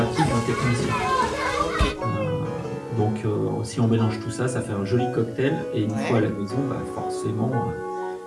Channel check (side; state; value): both; identical; correlation 1.00